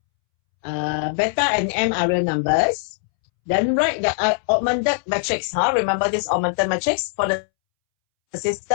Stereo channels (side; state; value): right; silent; 65 dB below the other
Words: Beta and m are real numbers. Then write the augmented matrix. Remember this augmented matrix for the